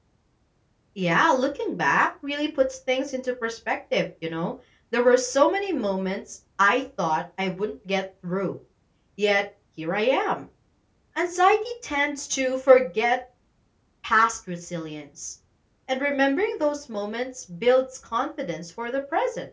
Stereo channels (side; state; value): both; identical; correlation 1.00